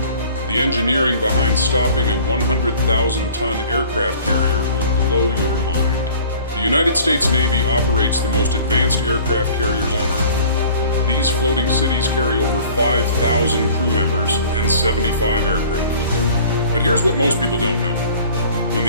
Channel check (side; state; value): both; inverted; correlation -0.48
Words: The engineering behind stopping a 100,000-ton aircraft carrier will blow your mind. The United States Navy operates the most advanced aircraft carriers on Earth. These floating cities carry over 5,000 crew members and 75 aircraft. But here's what most people don't know. When